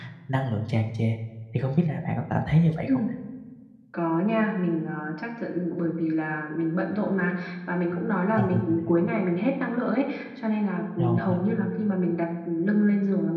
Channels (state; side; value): identical; both; correlation 1.00